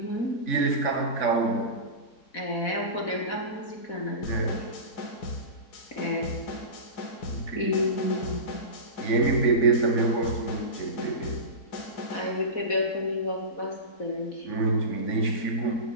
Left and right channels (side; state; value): right; late; 4.1 ms